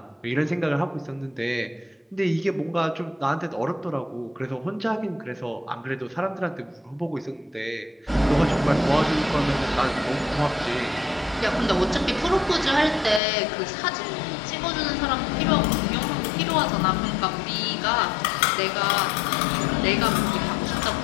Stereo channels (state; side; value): drops out; right; at 13.2 s